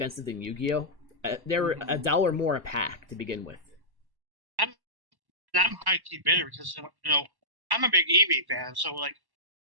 than Yu-Gi-Oh. They were $1 more a pack to begin with. I'm high key bitter because I'm a big Eevee fan, so like,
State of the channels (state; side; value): late; left; 1.1 ms